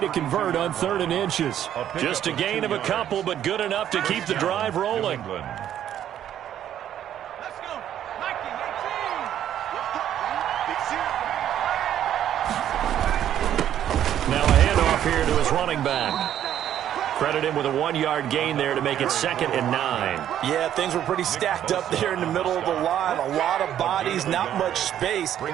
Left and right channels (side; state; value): left; quieter; 10.8 dB